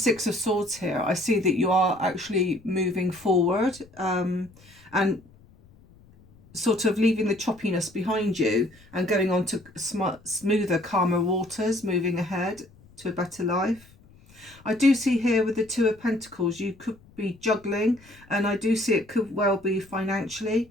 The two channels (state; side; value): noise; left; rumble, 26 dB below the sound